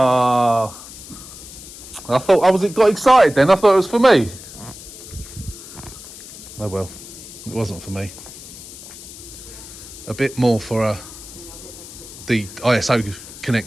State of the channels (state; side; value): noise; left; hiss, 15 dB below the sound